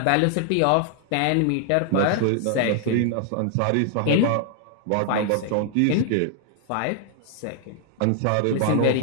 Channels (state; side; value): different; both; correlation 0.00